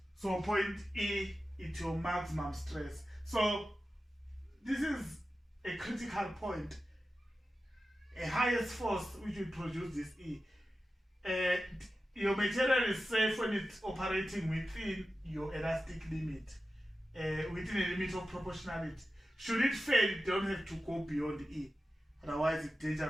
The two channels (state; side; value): normal; both; correlation 0.93